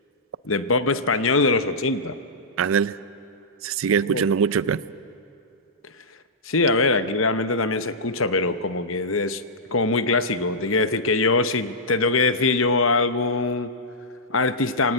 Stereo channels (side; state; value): both; normal; correlation -0.14